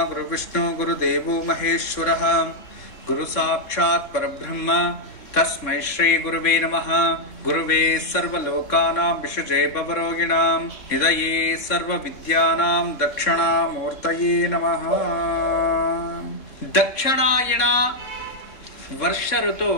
गुरुविष्णु गुरुदेवो महेश्वरः गुरु साक्षात् परब्रह्म तस्मै श्री गुरुवे नमः। गुरुवे सर्वलोकानां विषजे भवरोगिणां निधये सर्वविद्यानां दक्षिणामूर्तये नमः। दक्षिणायण वर्ष ऋतु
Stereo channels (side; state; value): right; late; 3.6 ms